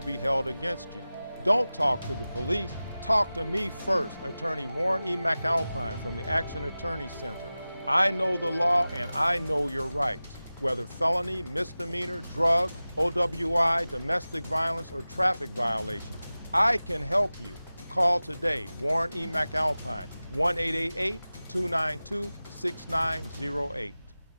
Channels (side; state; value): both; inverted; correlation -0.97